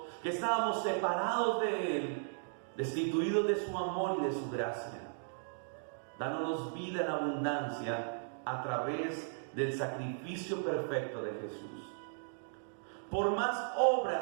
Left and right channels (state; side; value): silent; left; digital silence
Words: que estábamos separados de Él, destituidos de su amor y de su gracia, dándonos vida en abundancia a través del sacrificio perfecto de Jesús. Por más